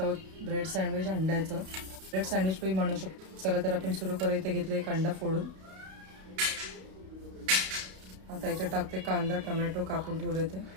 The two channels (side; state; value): left; late; 32 ms